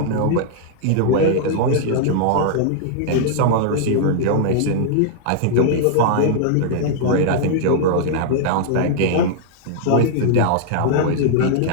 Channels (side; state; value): both; different; correlation -0.01